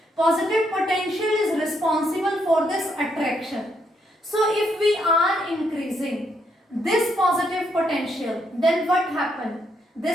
Positive potential is responsible for this attraction. So if we are increasing this positive potential, then what happens?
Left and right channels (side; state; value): both; normal; correlation 0.76